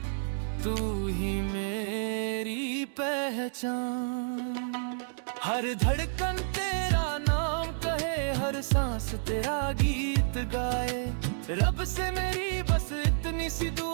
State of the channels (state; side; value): silent; left; digital silence